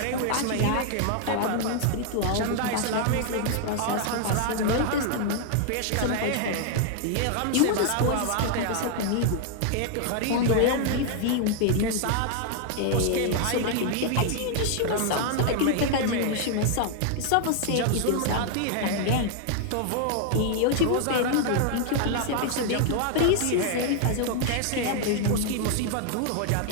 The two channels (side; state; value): both; different; correlation 0.00